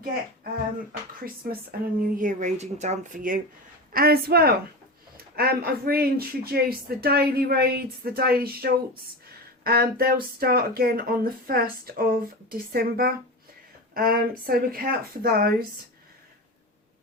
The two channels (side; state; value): both; normal; correlation 0.25